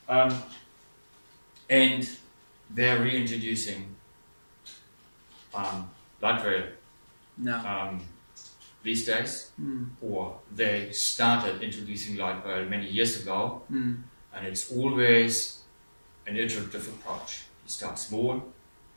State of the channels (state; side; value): inverted; both; correlation -1.00